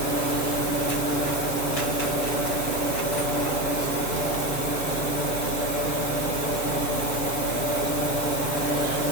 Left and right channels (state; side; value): late; right; 7.0 ms